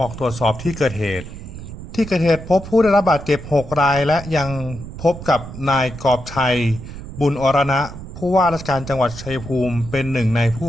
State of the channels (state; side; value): noise; right; rumble, 12 dB below the sound